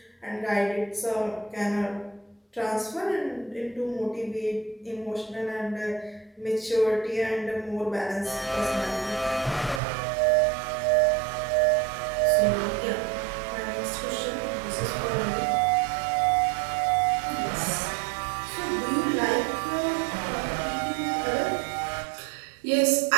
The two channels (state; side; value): drops out; left; at 9.8 s